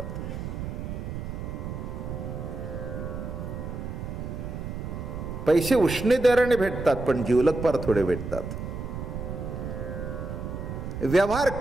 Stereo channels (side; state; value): right; noise; rumble, 6 dB below the sound